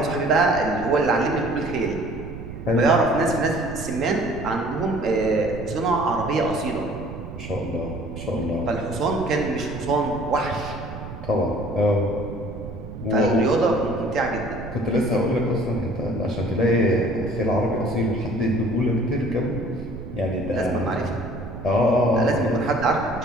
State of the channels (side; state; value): right; noise; rumble, 11 dB below the sound